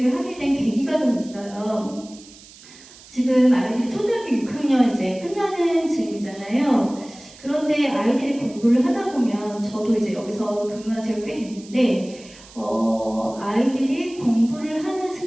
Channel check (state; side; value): noise; right; hiss, 21 dB below the sound